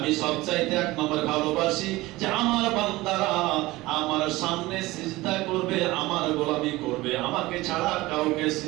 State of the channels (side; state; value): left; quieter; 19.4 dB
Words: সবচাইতে 1 নম্বরে ভালোবাসি যে আমার বান্দারা আমার সামনে সিজদা করবে, আমার গোলামি করবে, আমাকে ছাড়া কাউকে